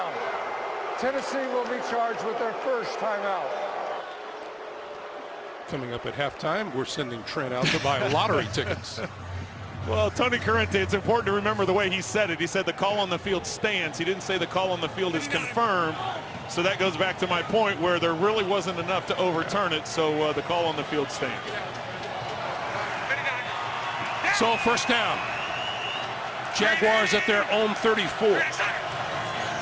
Tennessee will be charged with their first timeout. Coming up at halftime, we're sending Trent out to buy lottery tickets. Well, Tony Corrente, it's important to remember the way he said it. He said the call on the field stands. He didn't say the call on the field is confirmed. So that goes back to my point where there really wasn't enough to overturn it. So the call on the field stands. So first down. Jaguars at their own 34.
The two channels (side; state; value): both; identical; correlation 1.00